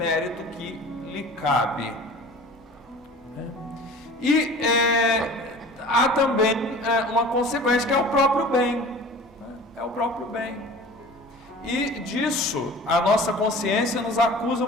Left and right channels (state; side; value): normal; both; correlation 0.41